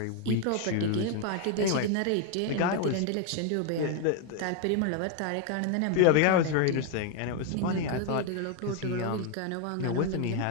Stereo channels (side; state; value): both; different; correlation 0.01